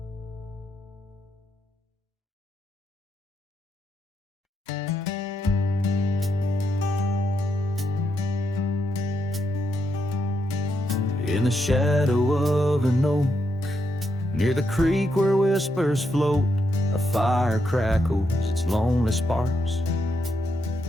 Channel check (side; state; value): both; normal; correlation 0.80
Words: in the shadow of an oak, near the creek where whispers float. A fire crackles its lonely sparks,